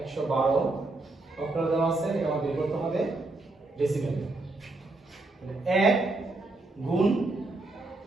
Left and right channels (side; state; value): left; quieter; 3.1 dB